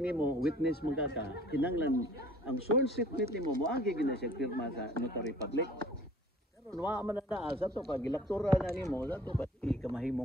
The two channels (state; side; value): normal; both; correlation 0.51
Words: nimo witness magkaka kinanglan ang sworn statement nimo moagi gina siya pirma sa notary public pero wa man na sa to pag ilaktura na nimo sa to pag